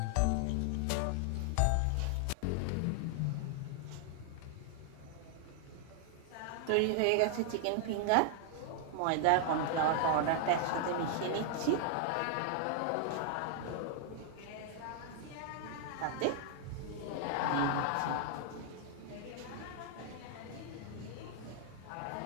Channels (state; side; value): different; both; correlation 0.00